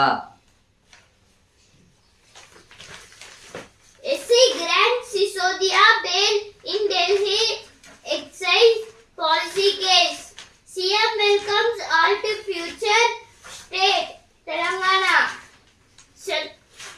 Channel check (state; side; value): identical; both; correlation 1.00